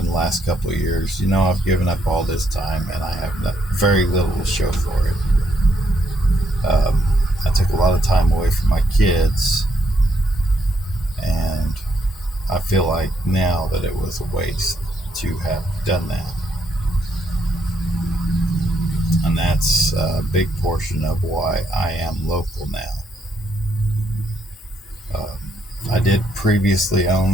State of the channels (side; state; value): both; normal; correlation 0.75